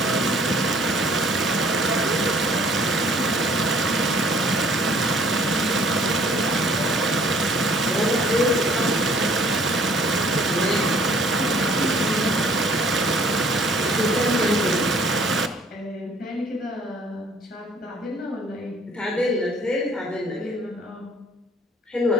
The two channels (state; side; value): normal; both; correlation 0.56